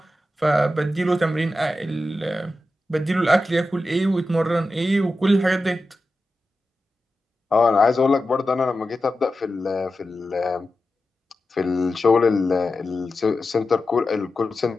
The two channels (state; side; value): normal; both; correlation 0.92